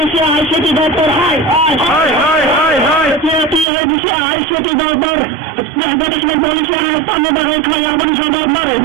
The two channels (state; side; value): drops out; left; at 3.7 s